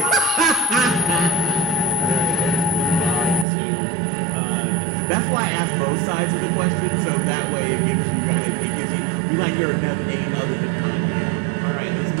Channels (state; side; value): drops out; left; at 3.5 s